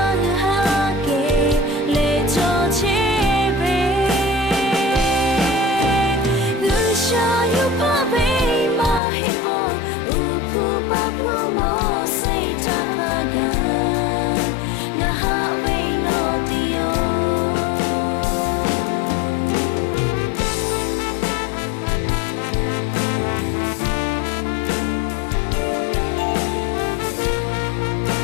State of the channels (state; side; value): drops out; right; at 9.0 s